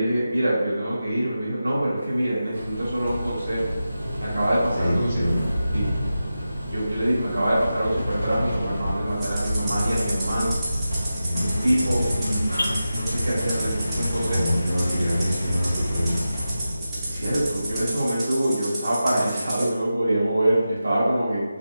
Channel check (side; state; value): both; inverted; correlation -0.92